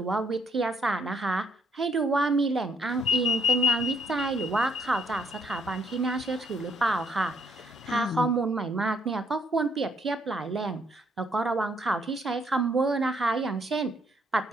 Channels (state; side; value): normal; both; correlation 0.69